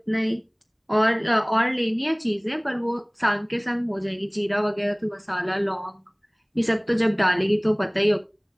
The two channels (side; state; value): both; identical; correlation 1.00